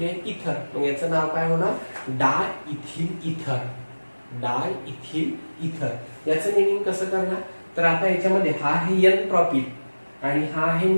आहे, इथर. मग याचं नाव काय होणार, डाय इथिल इथर. डाय इथिल इथर याचं नेमिंग कसं करणार, तर आता याच्यामध्ये हा आहे एन प्रॉपिल आणि हा आहे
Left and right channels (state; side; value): inverted; both; correlation -1.00